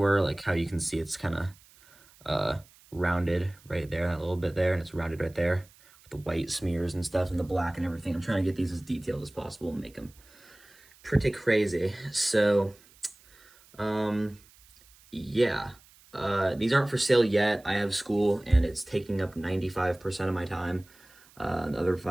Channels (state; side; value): noise; right; hiss, 27 dB below the sound